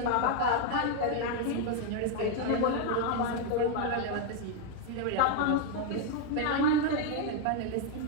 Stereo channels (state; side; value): different; both; correlation 0.01